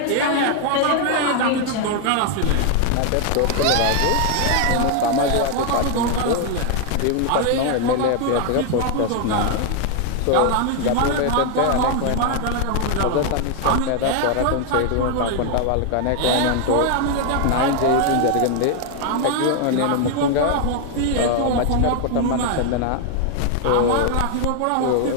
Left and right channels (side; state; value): both; different; correlation 0.00